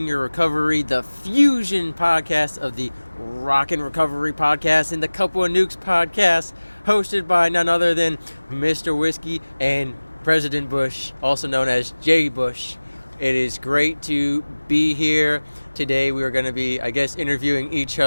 Your Recovery, the fusion podcast of the Rockin' Recovery podcast and the Couple of Nukes podcast, hosted by none other than Mr. Whiskey and President Bush, also known as J. Bush. It is great to be here. Today we are going to be, interviewing each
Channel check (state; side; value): inverted; both; correlation -1.00